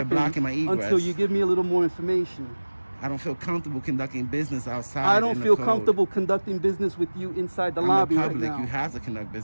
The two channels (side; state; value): both; inverted; correlation -1.00